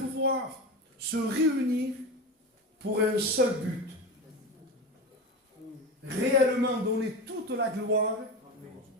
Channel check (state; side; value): normal; both; correlation 0.24